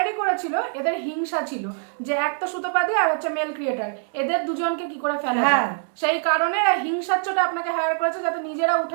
করেছিল, এদের হিংসা ছিল যে একটা সুতোপাদি আর হচ্ছে মেল ক্রিয়েটার, এদের দুজনকে কি করে ফেলা যায়, সেই কারণে এরা হিংসার চোটে আপনাকে হায়ার করেছে যাতে নিজেরা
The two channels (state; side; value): silent; left; 63 dB below the other